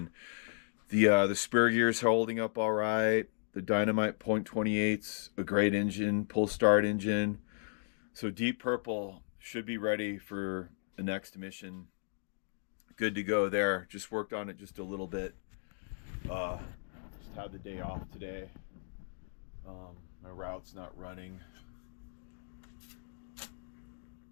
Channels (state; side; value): silent; right; digital silence